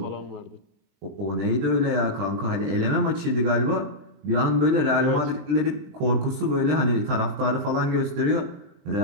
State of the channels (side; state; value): left; late; 20 ms